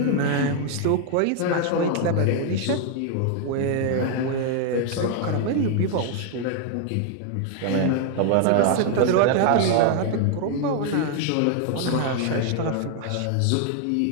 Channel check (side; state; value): both; different; correlation 0.00